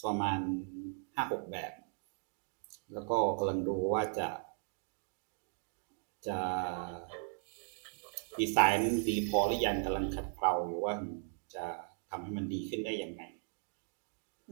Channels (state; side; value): silent; left; 53 dB below the other